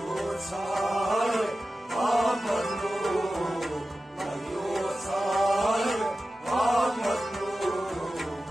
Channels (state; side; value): normal; both; correlation 0.94